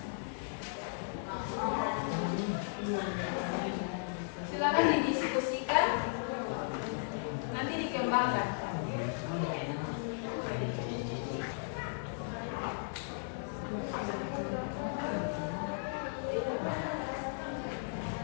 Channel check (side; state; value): right; silent; digital silence